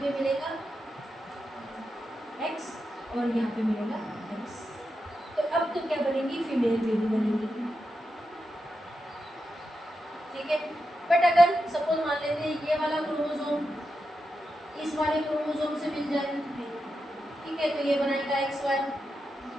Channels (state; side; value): normal; both; correlation 0.88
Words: पे मिलेगा X और यहाँ पे मिलेगा X। तो अब तो क्या बनेगी? फीमेल बेबी बनेगी। ठीक है। बट अगर सपोज मान लेते हैं ये वाला क्रोमोसोम इस वाले क्रोमोसोम से मिल जाए, ठीक है, तो ये बनेगा XY,